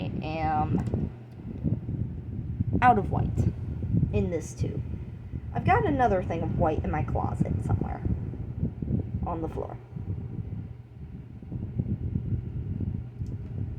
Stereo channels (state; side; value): identical; both; correlation 1.00